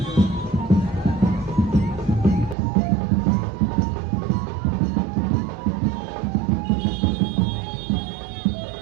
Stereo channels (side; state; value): left; drops out; at 2.6 s